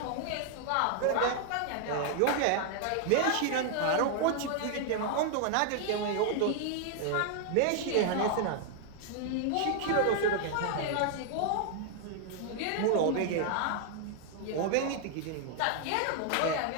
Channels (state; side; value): different; both; correlation 0.00